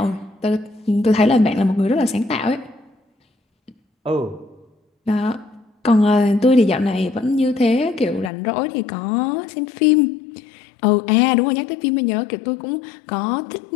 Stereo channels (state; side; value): drops out; right; at 8.3 s